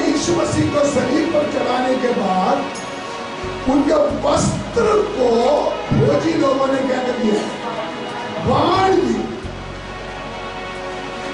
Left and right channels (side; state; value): both; identical; correlation 1.00